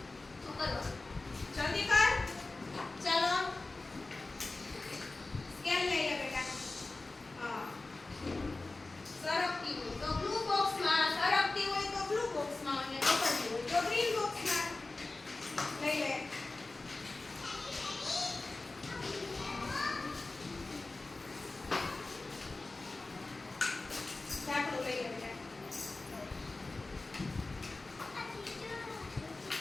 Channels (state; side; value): quieter; right; 3.3 dB